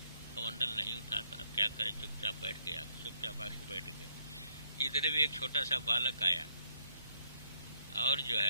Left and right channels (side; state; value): both; inverted; correlation -0.71